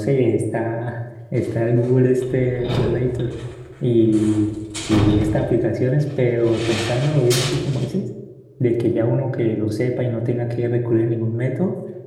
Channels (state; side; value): identical; both; correlation 1.00